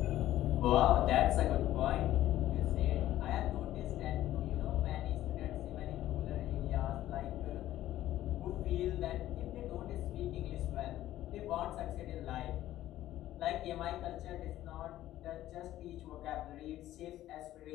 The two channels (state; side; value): quieter; right; 13.8 dB